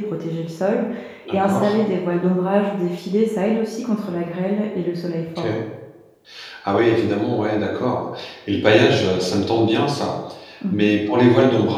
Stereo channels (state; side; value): identical; both; correlation 1.00